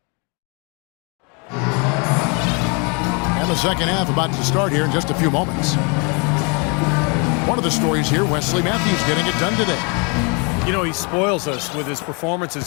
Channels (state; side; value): quieter; right; 33.1 dB